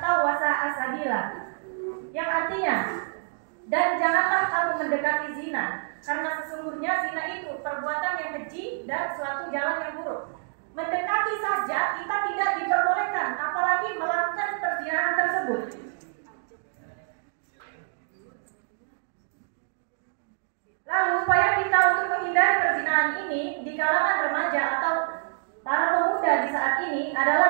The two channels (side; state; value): left; silent; digital silence